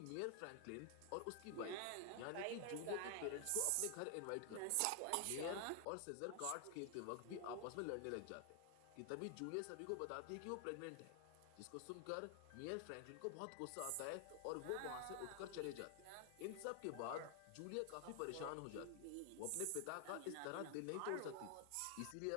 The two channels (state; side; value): different; both; correlation 0.00